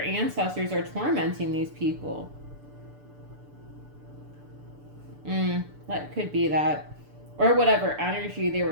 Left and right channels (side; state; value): left; late; 6.9 ms